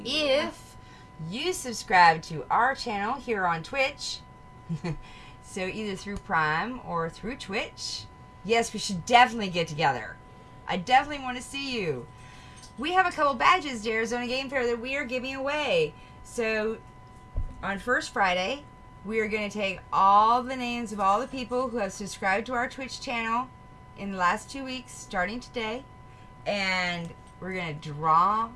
if you subscribe to our channel here on Twitch, so either through Prime or through Twitch, yes, we should definitely get together. I definitely want to see you. We have a couple badges to Arizona Game Fair that we are giving away. So on First Friday, we are going to take all the names of all the people who have subscribed to our Twitch channel in the last 2 weeks, starting today, and we're going to draw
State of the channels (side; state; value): both; identical; correlation 1.00